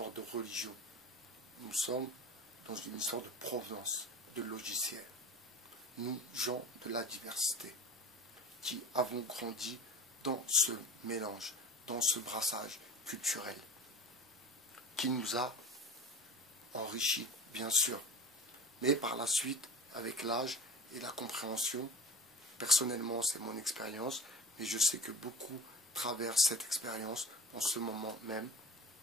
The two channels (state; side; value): normal; both; correlation 0.36